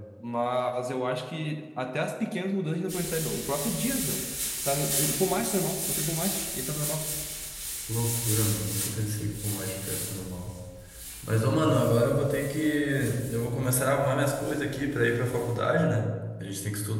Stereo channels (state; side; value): identical; both; correlation 1.00